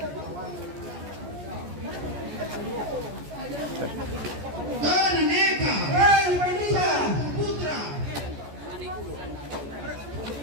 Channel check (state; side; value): late; left; 14 ms